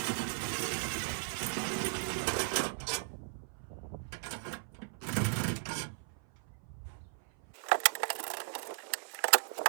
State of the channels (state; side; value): silent; left; 53 dB below the other